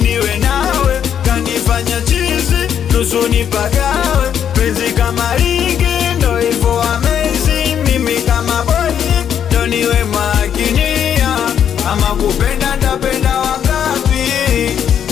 nawe. Kanifanya chizi nusu nipagawe, penzi kama ligi ndo hivyo amazing. Mimi kama boy ndo niwe makinia, ama kupenda ndapenda wangapi,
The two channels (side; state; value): right; quieter; 8.8 dB